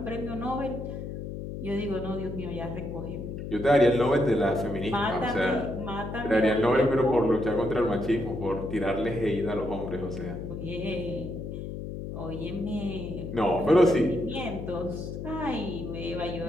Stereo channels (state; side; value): noise; left; hum, 7 dB below the sound